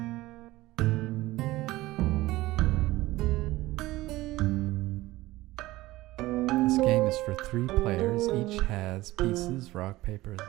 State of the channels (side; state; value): left; quieter; 18.1 dB